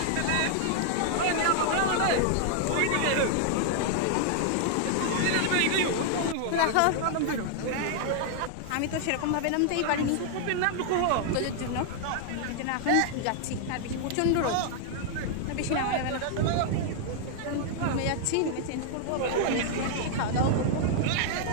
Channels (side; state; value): both; different; correlation 0.00